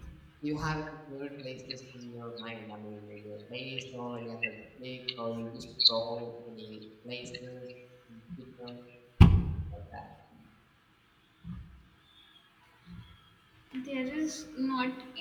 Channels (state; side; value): identical; both; correlation 1.00